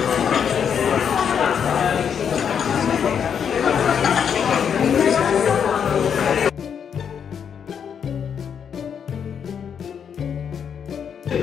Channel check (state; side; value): quieter; right; 7.6 dB